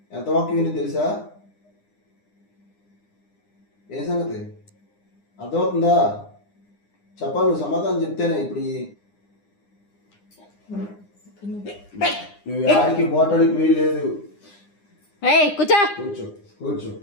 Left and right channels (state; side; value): late; right; 9.8 ms